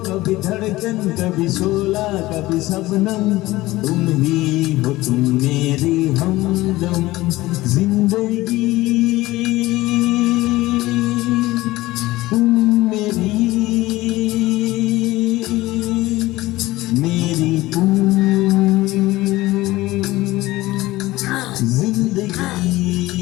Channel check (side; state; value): right; quieter; 18.3 dB